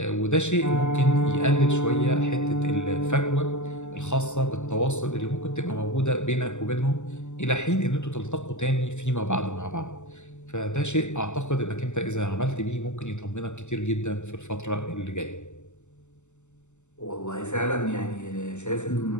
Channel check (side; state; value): right; late; 0.83 ms